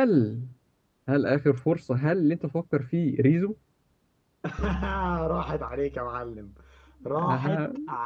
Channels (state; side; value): identical; both; correlation 1.00